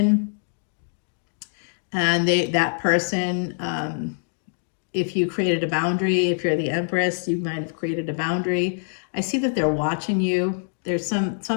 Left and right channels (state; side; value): silent; right; digital silence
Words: and that person if you created a boundary, if you're the Empress, you might have created a boundary. I see that they're watching you. There's